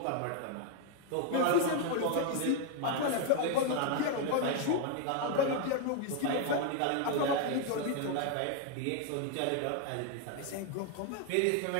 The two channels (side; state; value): both; different; correlation 0.01